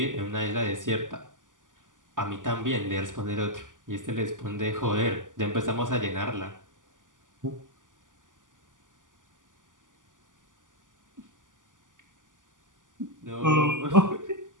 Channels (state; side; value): late; left; 0.88 ms